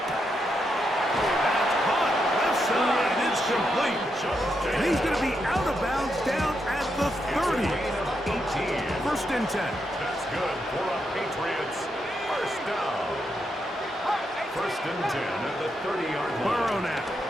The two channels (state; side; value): normal; both; correlation 0.82